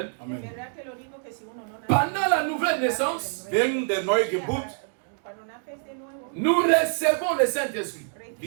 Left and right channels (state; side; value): silent; left; 61 dB below the other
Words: Amen. Pendant la nouvelle naissance, Während der Neugeburt, nous recevons le Saint-Esprit.